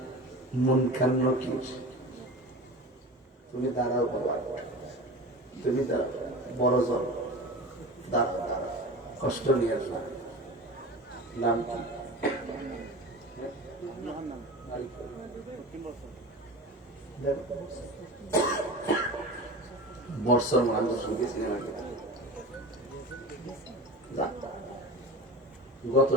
মুনকার নকির, তুমি দাঁড়াও বাবা, তুমি দাঁড়াও, বড় জন দাঁড়াও, দাঁড়াও, কষ্ট নিয়ে না। নাম কি? বর্ষর মানুষ সিনেমা, গত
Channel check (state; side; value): normal; both; correlation 0.33